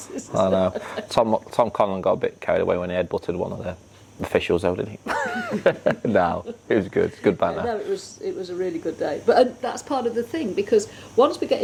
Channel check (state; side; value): identical; both; correlation 1.00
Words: Tom Conlon got a bit carried away when he headbutted one of the officials, though, didn't he? No, it was good. Good banter. No, it was a really good day. But that's part of the thing, because once we get